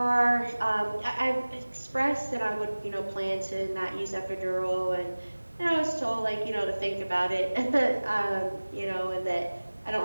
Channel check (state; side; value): inverted; both; correlation -1.00